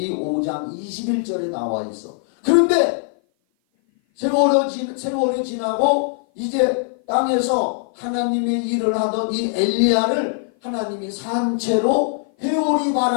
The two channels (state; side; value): silent; right; 56 dB below the other